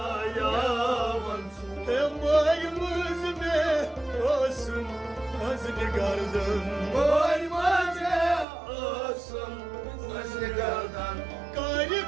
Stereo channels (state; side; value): drops out; left; at 8.5 s